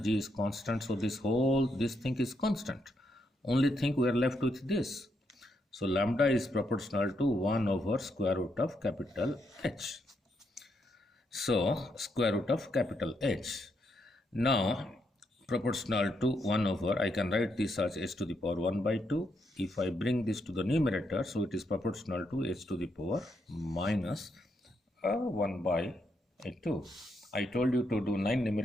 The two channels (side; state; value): both; normal; correlation 0.79